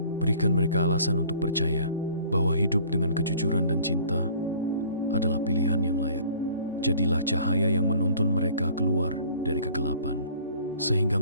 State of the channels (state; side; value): inverted; both; correlation -0.52